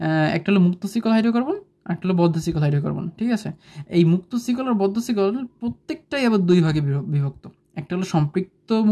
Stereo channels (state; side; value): identical; both; correlation 1.00